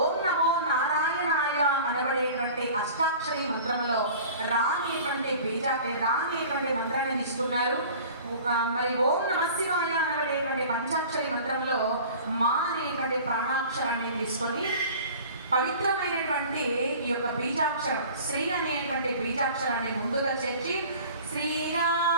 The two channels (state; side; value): inverted; both; correlation -0.43